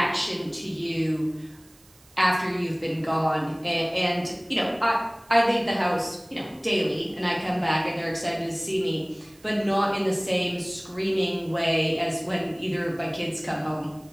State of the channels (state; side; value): noise; right; hiss, 28 dB below the sound